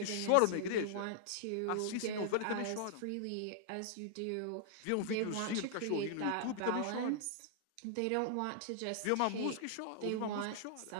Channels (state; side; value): different; both; correlation -0.01